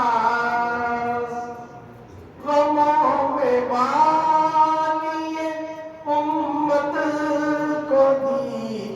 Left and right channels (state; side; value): identical; both; correlation 1.00